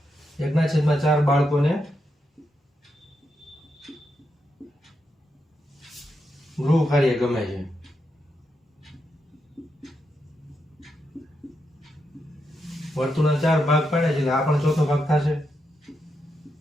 1/4 બાળકોને ગૃહ કાર્ય ગમે છે. વર્તુળના 4 ભાગ પાડ્યા છે, એટલે આ પણ ચોથો ભાગ થશે.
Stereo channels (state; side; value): normal; both; correlation 0.84